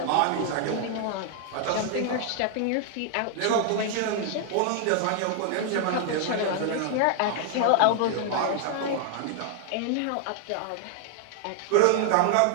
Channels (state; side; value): different; both; correlation 0.00